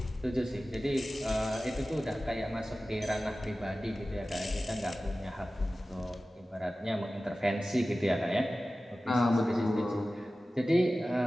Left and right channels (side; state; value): both; normal; correlation 0.96